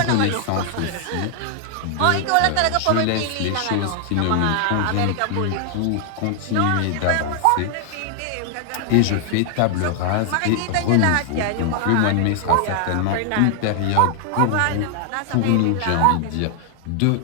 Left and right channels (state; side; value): different; both; correlation 0.00